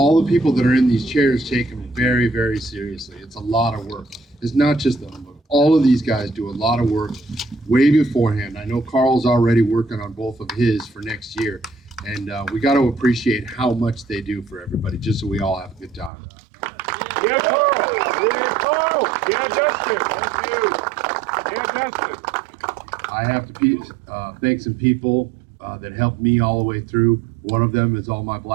the people that are in these chairs take them very, very seriously. It's a lot of work. is not just the humbug. All of these guys do a lot of work way beforehand. I know Carl's already working on both of his for next year, and we got to appreciate how much they do for everybody, just so we all have a good time. Yeah, Carl. Yeah, Carl. Yeah, Justin. Thank you. Yeah, Justin. I have to thank some people that helped me all the way through. One of them is all my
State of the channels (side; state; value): left; drops out; at 16.1 s